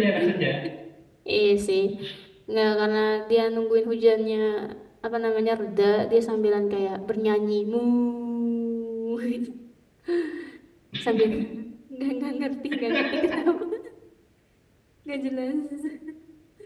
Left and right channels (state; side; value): identical; both; correlation 1.00